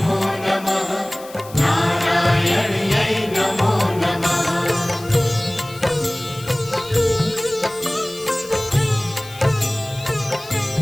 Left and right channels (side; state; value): left; noise; hiss, 19 dB below the sound